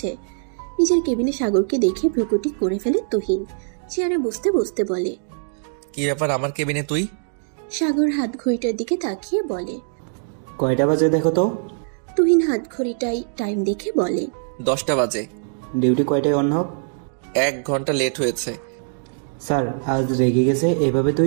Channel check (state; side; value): silent; left; digital silence